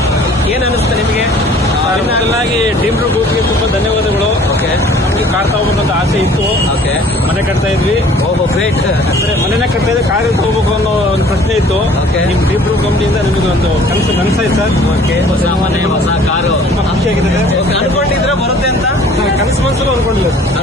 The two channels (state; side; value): normal; both; correlation 0.52